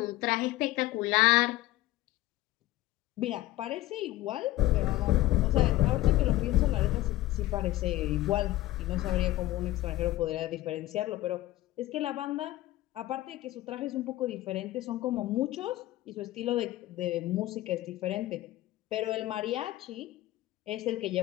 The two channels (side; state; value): right; quieter; 16.6 dB